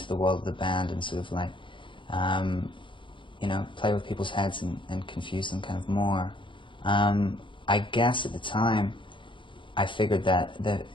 the world of the band and sort of like play with people's heads and confuse them kind of more. I guess at the time, I figured that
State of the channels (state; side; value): late; right; 0.24 ms